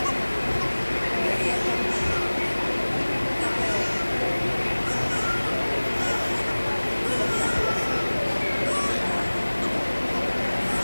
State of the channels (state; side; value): inverted; both; correlation -1.00